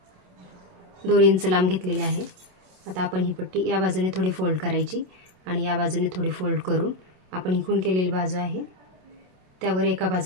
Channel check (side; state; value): left; late; 27 ms